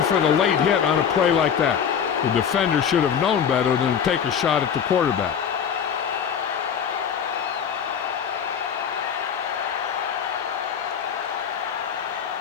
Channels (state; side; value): quieter; right; 7.8 dB